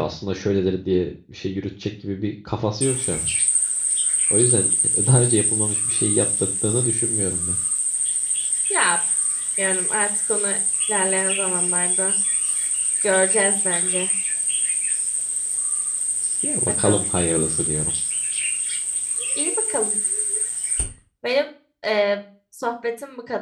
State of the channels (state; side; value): identical; both; correlation 1.00